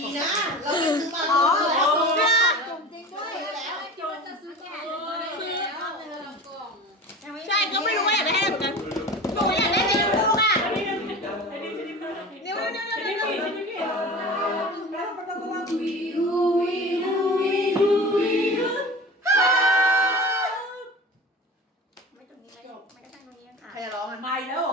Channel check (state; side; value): normal; both; correlation 0.35